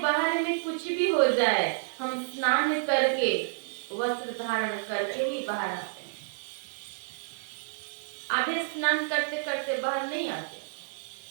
में कुछ भी हो जाए, हम स्नान करके वस्त्र धारण करके ही बाहर आते हैं। आधे स्नान करते करते बाहर नहीं आते।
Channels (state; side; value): silent; left; digital silence